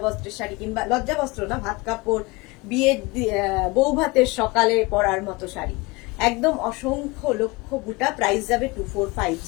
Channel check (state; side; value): quieter; right; 24.0 dB